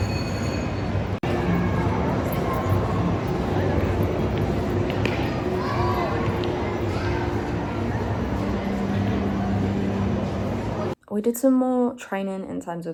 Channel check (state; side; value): identical; both; correlation 1.00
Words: We did some more training in terms